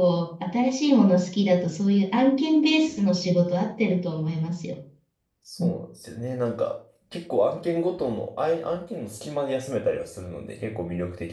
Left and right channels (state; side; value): identical; both; correlation 1.00